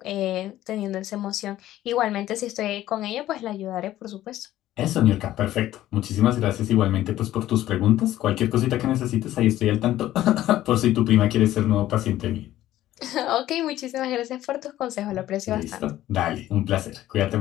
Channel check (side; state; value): right; quieter; 13.9 dB